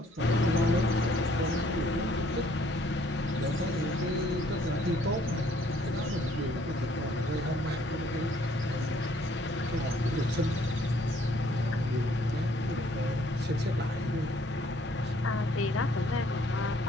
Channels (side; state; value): both; normal; correlation 0.63